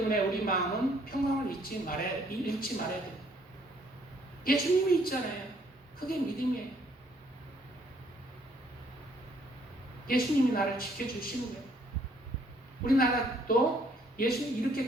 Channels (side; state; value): both; normal; correlation 0.65